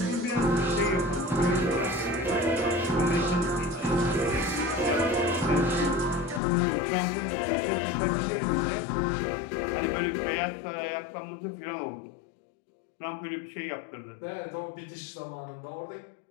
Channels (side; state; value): right; drops out; at 6.4 s